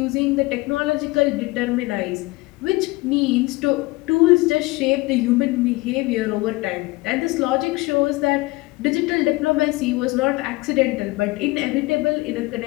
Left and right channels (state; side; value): quieter; right; 22.1 dB